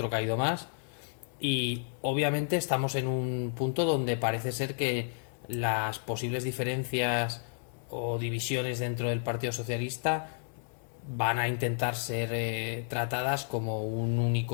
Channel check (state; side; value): silent; right; digital silence